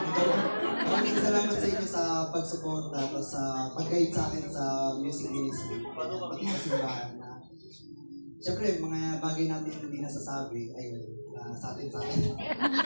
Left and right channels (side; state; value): both; inverted; correlation -1.00